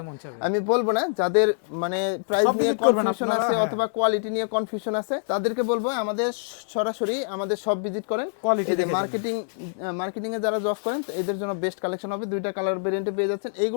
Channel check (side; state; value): right; silent; digital silence